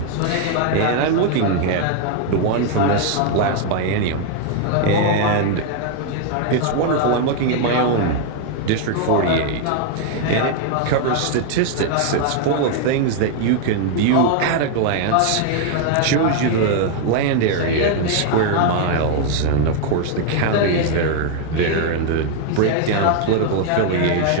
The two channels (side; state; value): both; different; correlation 0.00